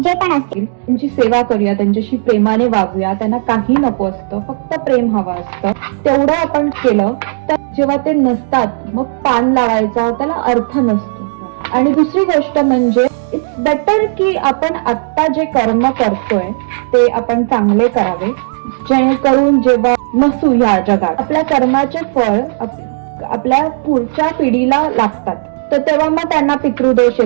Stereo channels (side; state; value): left; silent; digital silence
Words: पण असतील, त्यांची सेवा करूया, त्यांच्याशी प्रेमाने वागूया. त्यांना काही नको असतं, फक्त प्रेम हवं असतं. तेवढं आपण केलं तर जेव्हा ते नसतात मग पान लावायचा त्याला अर्थ नसतो. आणि दुसरी गोष्ट म्हणजे इट्स बेटर की आपण आत्ता जे कर्म करतोय ते आपण चांगले करावे, जेणेकरून जेव्हा नसू या जगात आपल्या कर्माचे फळ आपल्या पुढच्या पिढीला लागतात, तर तेव्हा मग त्यांना पितृदोष